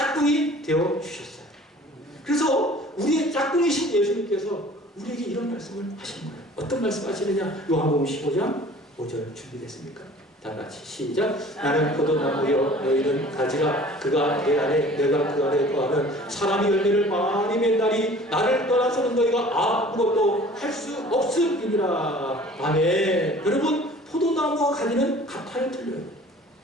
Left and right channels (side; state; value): both; normal; correlation 0.48